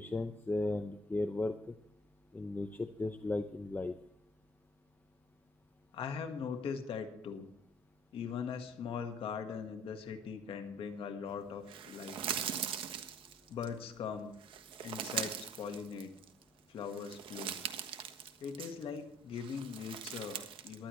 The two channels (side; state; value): both; normal; correlation 0.60